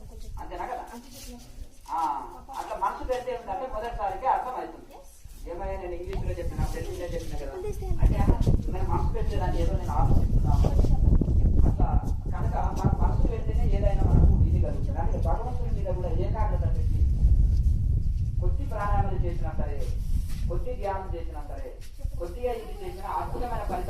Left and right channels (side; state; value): both; identical; correlation 1.00